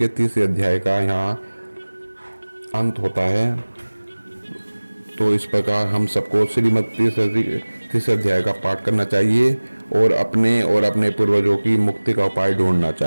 30 अध्याय का यहाँ अंत होता है। तो इस प्रकार हम सबको श्रीमद् 30 अध्याय का पाठ करना चाहिए और अपने पूर्वजों की मुक्ति का उपाय ढूंढना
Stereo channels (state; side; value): inverted; both; correlation -1.00